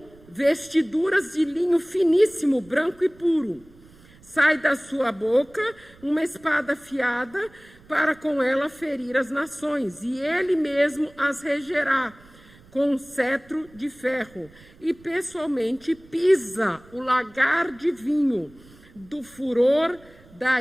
vestiduras de linho finíssimo, branco e puro. Sai da sua boca uma espada afiada, para com ela ferir as nações, e ele mesmo as regerá com um cetro de ferro, e pessoalmente pisa o lagar de vinho do furor da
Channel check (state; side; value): noise; right; rumble, 25 dB below the sound